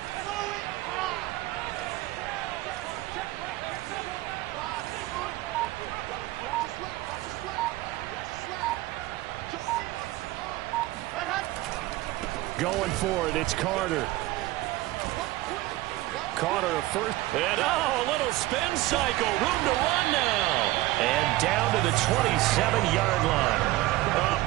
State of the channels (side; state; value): left; quieter; 17.9 dB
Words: Going for it, it's Carter. Carter a first. And a little spin cycle. Room to run now. And down to the 27-yard line. A